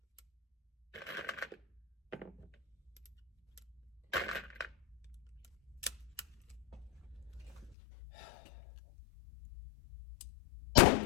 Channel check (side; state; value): right; drops out; at 7.8 s